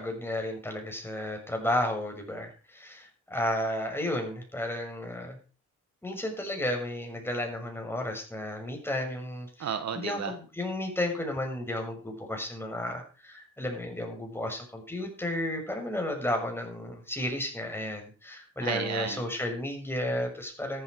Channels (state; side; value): normal; both; correlation 0.53